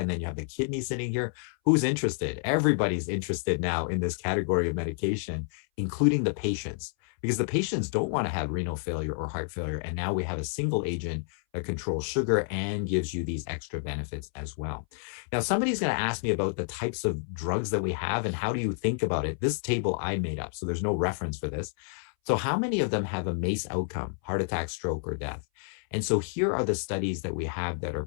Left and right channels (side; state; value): right; silent; 58 dB below the other